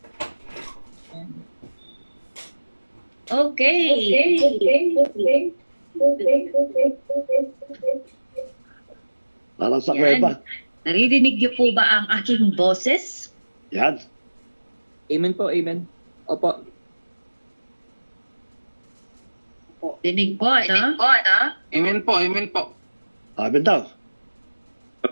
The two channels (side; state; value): both; inverted; correlation -1.00